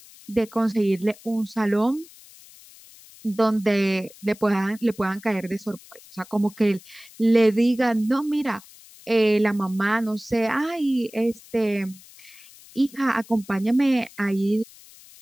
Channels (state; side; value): noise; left; hiss, 22 dB below the sound